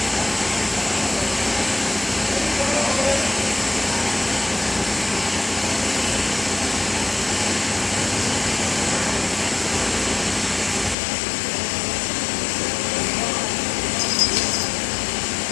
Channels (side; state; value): right; drops out; at 11.0 s